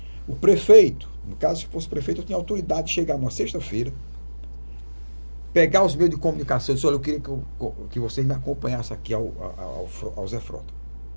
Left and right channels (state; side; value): inverted; both; correlation -1.00